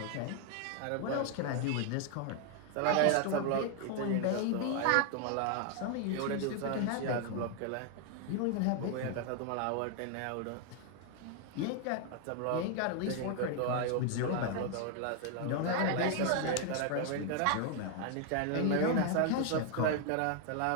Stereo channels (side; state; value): both; different; correlation 0.00